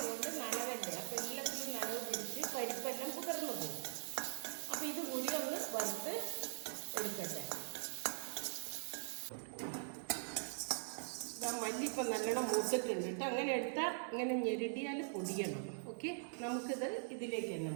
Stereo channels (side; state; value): left; silent; digital silence